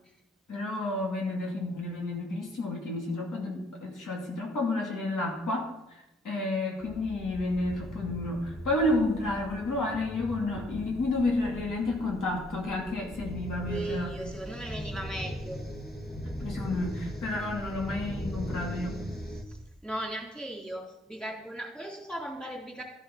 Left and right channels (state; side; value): normal; both; correlation 0.65